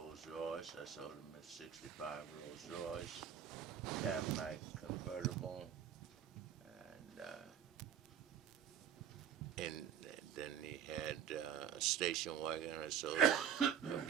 Royce. I sold him a 65 Rolls Royce, Cadillac convertible, and then he had a station wagon. I sold him a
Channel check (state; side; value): quieter; left; 8.8 dB